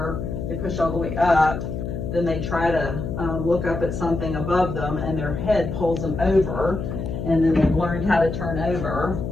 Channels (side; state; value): left; noise; hum, 5 dB below the sound